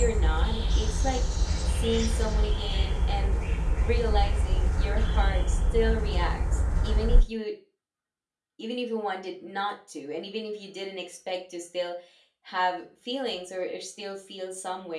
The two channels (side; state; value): both; identical; correlation 1.00